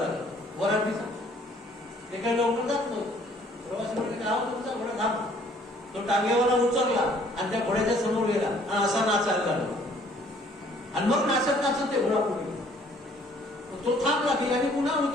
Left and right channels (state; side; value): normal; both; correlation 0.59